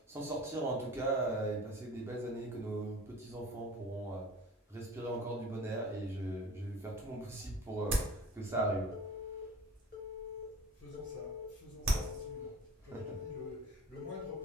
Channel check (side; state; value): both; normal; correlation 0.42